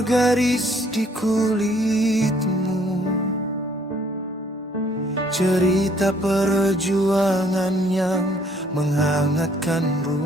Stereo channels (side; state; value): both; normal; correlation 0.63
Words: garis di kulitmu, cerita perjuangan yang menghangatkan